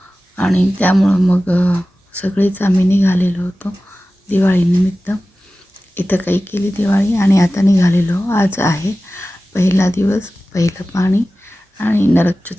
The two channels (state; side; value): normal; both; correlation 0.96